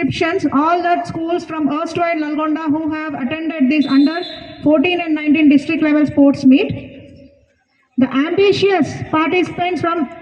All the schools from erstwhile Nalgonda who have attended this under 14 and 19 district level sports meet. The ambitious participants from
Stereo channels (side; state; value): both; identical; correlation 1.00